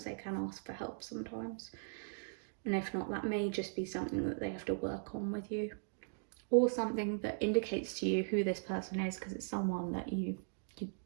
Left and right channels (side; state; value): left; silent; digital silence